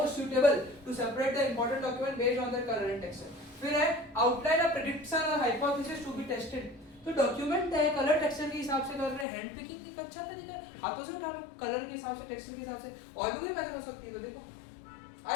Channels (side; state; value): right; drops out; at 9.2 s